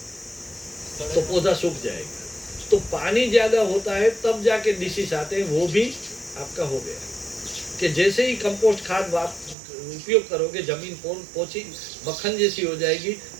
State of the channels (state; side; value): drops out; left; at 9.6 s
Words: तो पौधा सूख जाएगा। तो पानी ज्यादा होता है तब जाके डिसीज आते हैं, वो भी आपका हो गया। कि जैसे ही कंपोस्ट खाद आप उपयोग करोगे, जमीन पोछी मक्खन जैसी हो जाएगी,